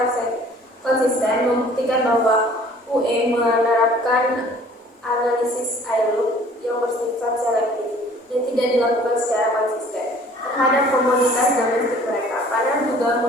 membuktikan bahwa UE menerapkan analisis ILO yang bersifat selektif dan tidak dilakukan secara konsisten terhadap komoditas domestik mereka. Panel juga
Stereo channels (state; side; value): normal; both; correlation 0.52